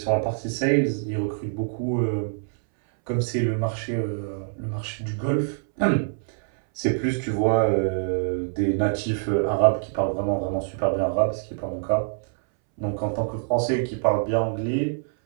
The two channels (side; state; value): left; silent; 62 dB below the other